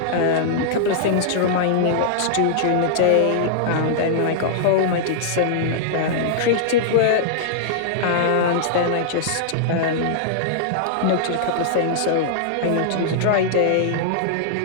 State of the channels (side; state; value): both; different; correlation -0.01